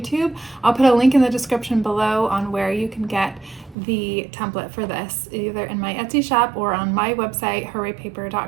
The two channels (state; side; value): drops out; left; at 3.8 s